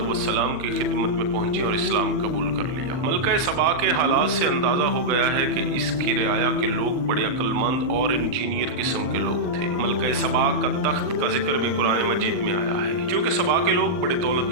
की खिदमत में पहुंची और इस्लाम कबूल कर लिया। मलका सबा के हालात से अंदाजा हो गया है कि इसकी रियाया के लोग बड़े अक्लमंद और इंजीनियर किस्म के लोग थे। मलका सबा का तख्त का जिक्र भी कुरान मजीद में आया है। क्योंकि सबा के लोग बड़े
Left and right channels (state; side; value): late; left; 39 ms